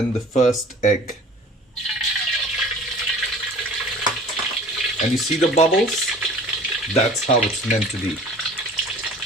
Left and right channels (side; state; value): both; normal; correlation 0.46